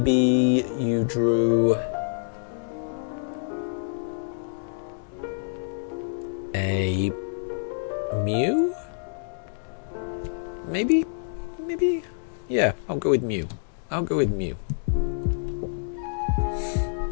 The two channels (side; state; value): right; silent; digital silence